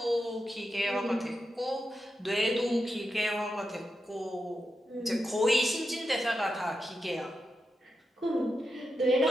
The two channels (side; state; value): both; normal; correlation 0.88